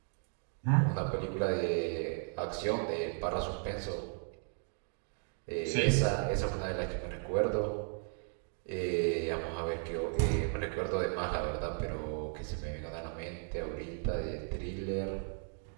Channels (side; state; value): left; silent; 54 dB below the other